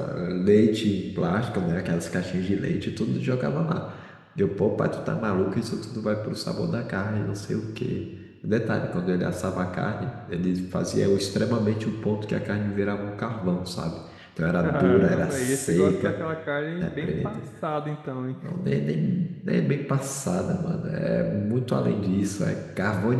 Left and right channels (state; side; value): identical; both; correlation 1.00